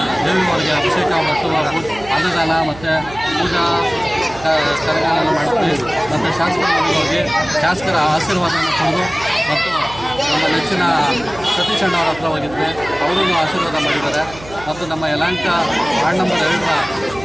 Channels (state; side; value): noise; right; hum, 17 dB below the sound